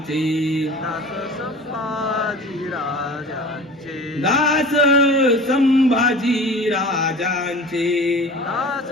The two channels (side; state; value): both; normal; correlation 0.40